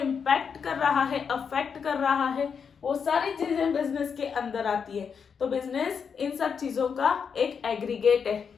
कर रहा है, अफेक्ट कर रहा है, वो सारी चीजें बिजनेस के अंदर आती है। तो बिजनेस इन सब चीजों का एक एग्रीगेट है,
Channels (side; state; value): right; quieter; 6.4 dB